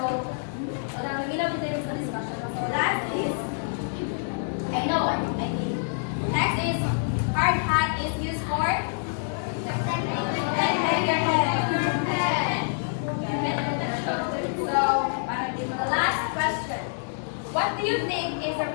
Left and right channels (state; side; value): silent; right; 60 dB below the other